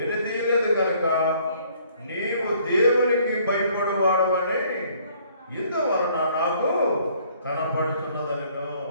కనుక నీవు దేవునికి భయపడేవాడవని ఇందువలన నాకు కనపడుతున్నదనను.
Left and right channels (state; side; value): inverted; both; correlation -0.61